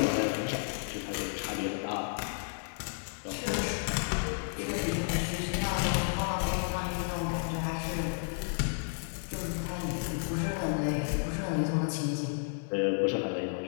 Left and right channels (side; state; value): right; silent; 56 dB below the other